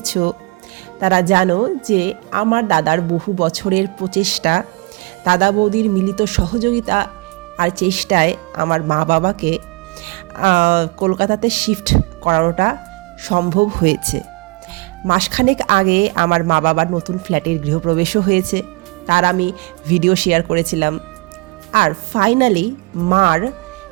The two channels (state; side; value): quieter; left; 25.6 dB